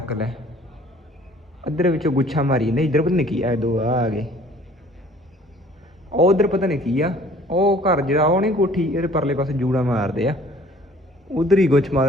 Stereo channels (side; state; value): both; normal; correlation 0.53